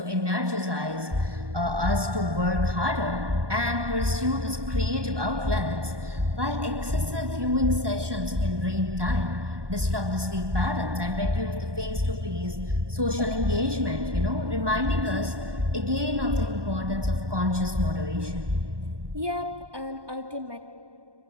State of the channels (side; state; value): left; late; 1.2 ms